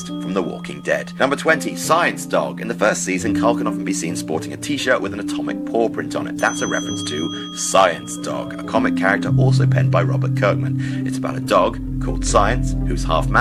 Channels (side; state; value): both; identical; correlation 1.00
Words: from The Walking Dead. Number 20, Science Dog. In the first season, Carl can often be seen sporting a t-shirt with an atomic paw print on it. That's a reference to Science Dog, a comic character also penned by Robert Kirkman. It's about a dog called Science, who's half